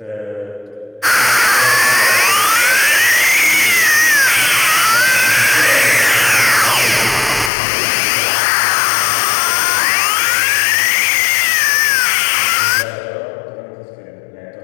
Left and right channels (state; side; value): drops out; right; at 7.5 s